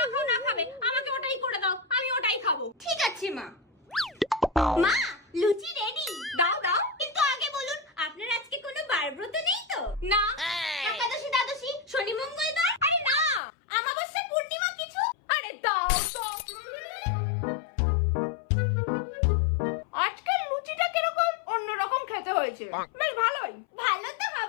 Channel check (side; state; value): right; drops out; at 13.4 s